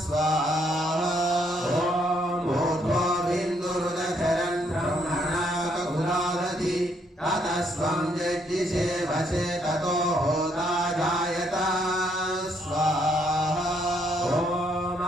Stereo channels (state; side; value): normal; both; correlation 0.71